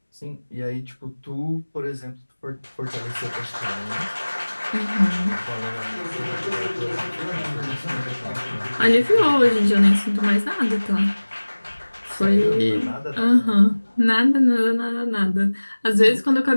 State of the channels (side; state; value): both; inverted; correlation -1.00